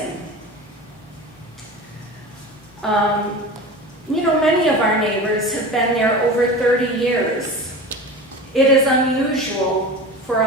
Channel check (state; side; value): normal; both; correlation 0.32